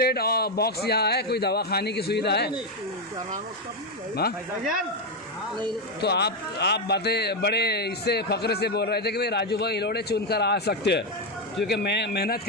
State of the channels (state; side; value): normal; both; correlation 0.06